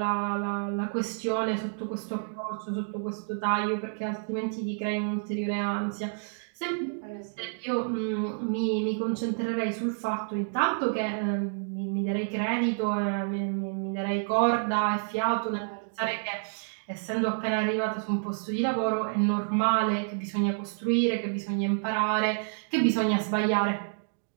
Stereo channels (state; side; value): silent; left; digital silence